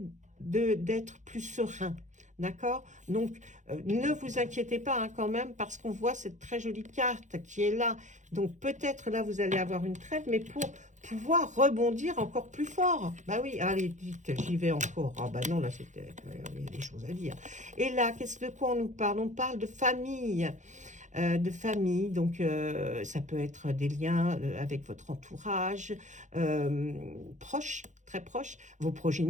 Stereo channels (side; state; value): left; late; 0.35 ms